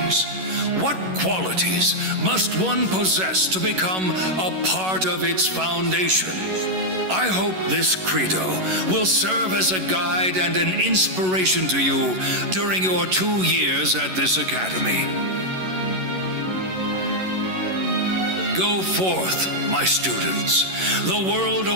what qualities must one possess to become a part of its foundation? I hope this credo will serve as a guide and an inspiration to you during your 2 years at this academy. Go forth, my students. The world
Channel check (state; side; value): late; left; 11 ms